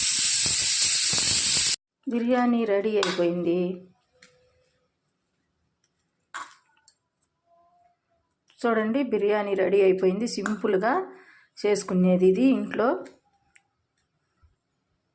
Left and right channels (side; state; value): both; identical; correlation 1.00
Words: బిర్యానీ రెడీ అయిపోయింది. చూడండి, బిర్యానీ రెడీ అయిపోయింది. సింపుల్గా చేసుకునేది ఇది ఇంట్లో.